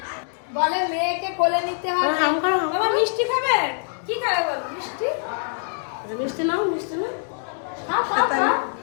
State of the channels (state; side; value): silent; right; 63 dB below the other